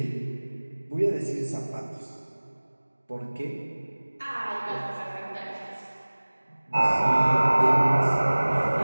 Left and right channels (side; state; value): both; inverted; correlation -1.00